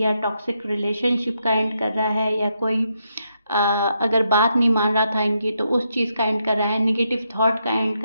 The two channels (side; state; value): both; inverted; correlation -0.80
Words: टॉक्सिक रिलेशनशिप का एंड कर रहा है, या कोई अगर बात नहीं मान रहा था इनकी तो उस चीज़ का एंड कर रहा है, निगेटिव थॉट का एंड